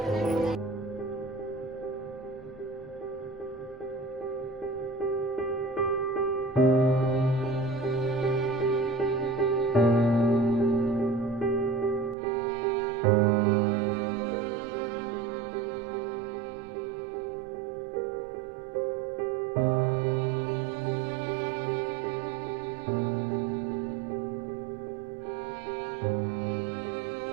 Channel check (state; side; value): drops out; left; at 12.2 s